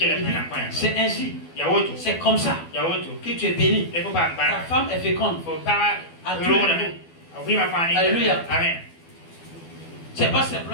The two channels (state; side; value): late; right; 12 ms